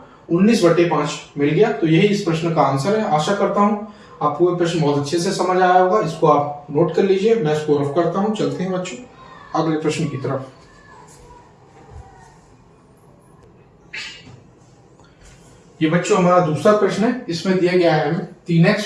19/5 मिल गया। तो यही इस प्रश्न का आंसर है। आशा करता हूं आपको ये प्रश्न बहुत अच्छे से समझ आया होगा, इसको आप नोट कर लीजिए, मैं इसको रफ करता हूँ। चलते हैं बच्चों अगले प्रश्न की तरफ। ये बच्चों हमारा दूसरा प्रश्न है। इसमें दिया गया है हमें 3x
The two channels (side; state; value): both; identical; correlation 1.00